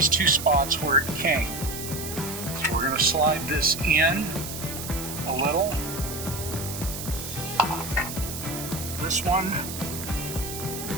two spots where it came. So we're going to slide this in a little. This one,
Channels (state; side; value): noise; right; hiss, 8 dB below the sound